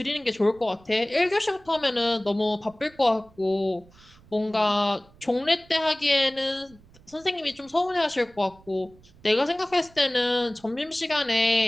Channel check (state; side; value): noise; right; rumble, 27 dB below the sound